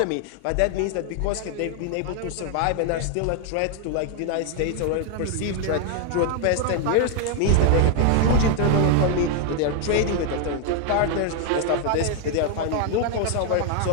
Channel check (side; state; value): both; different; correlation 0.00